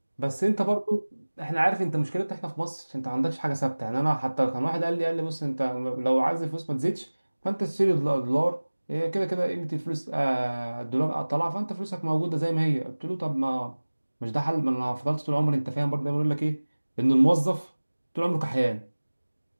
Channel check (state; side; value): inverted; both; correlation -1.00